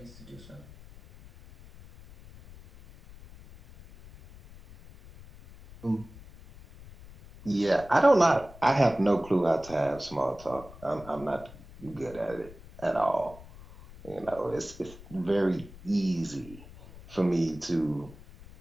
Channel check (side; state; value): left; noise; rumble, 19 dB below the sound